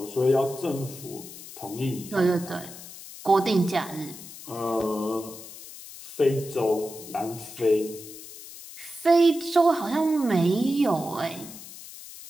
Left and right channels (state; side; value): noise; left; hiss, 15 dB below the sound